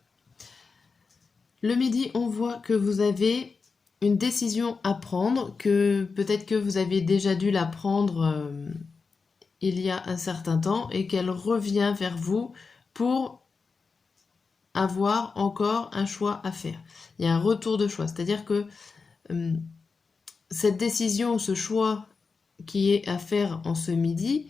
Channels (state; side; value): quieter; right; 4.7 dB